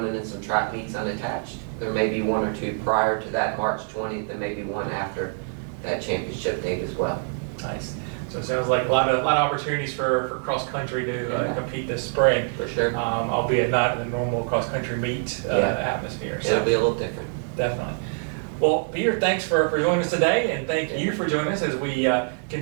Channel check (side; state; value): left; silent; 62 dB below the other